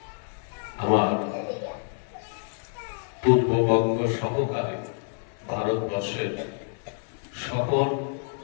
আমার পূর্ববঙ্গ সহকারে ভারতবর্ষের সকল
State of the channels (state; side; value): silent; right; 60 dB below the other